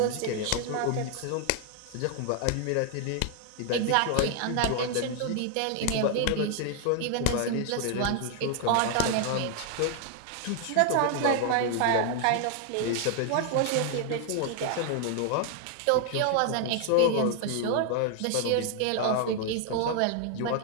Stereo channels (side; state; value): both; different; correlation 0.00